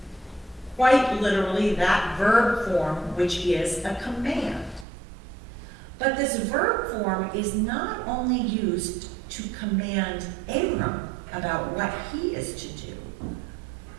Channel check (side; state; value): left; drops out; at 4.9 s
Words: Quite literally, that verb form, which is a command. But this verb form is not only used to command Abram about what he is to do.